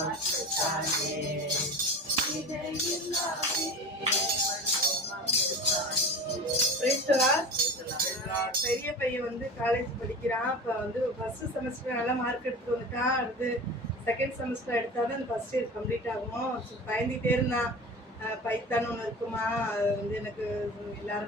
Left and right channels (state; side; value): normal; both; correlation 0.33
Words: பெரிய பையன் வந்து காலேஜ் படிக்கிறான். இப்போ வந்து ஃபர்ஸ்ட் செமஸ்டர் நல்லா மார்க் எடுத்து வந்துட்டான். அடுத்து செகண்ட் செமஸ்டர் எடுத்தாலும் அந்த ஃபர்ஸ்ட் இயர் கம்ப்ளீட் ஆகும். பயந்துகிட்டே இருந்தான், பைத்தான் ஒன்று இருக்குமா, அது வந்து எனக்கு